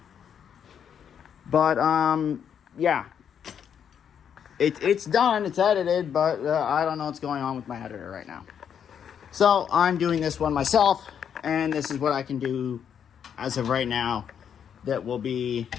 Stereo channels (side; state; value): right; quieter; 8.2 dB